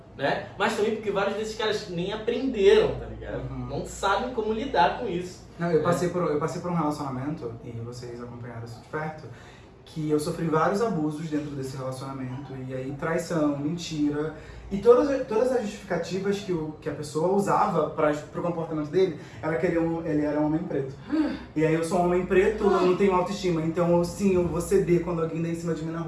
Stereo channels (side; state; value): both; identical; correlation 1.00